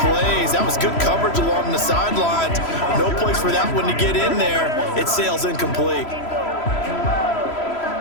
That was good coverage along the sidelines. No place for that one to get in there. It sails incomplete.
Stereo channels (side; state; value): right; late; 3.0 ms